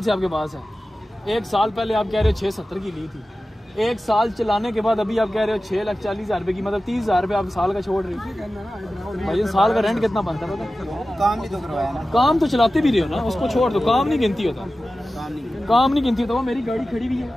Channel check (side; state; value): both; normal; correlation 0.95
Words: से आपके पास है, 1 साल पहले आप कह रहे हो 670 की ली थी, 1 साल चलाने के बाद अभी आप कह रहे हो 6,40,000 रुपये की, मतलब 30,000 रुपये आप साल का छोड़ रहे हो। भाई साल का रेंट कितना बनता है पता? काम भी तो करवाया ना, काम तो चलाते भी रहे हो ना, उसको छोड़ दो, काम नहीं गिनती होता, काम नहीं गिनती होता। वो मेरी गाड़ी खड़ी हुई है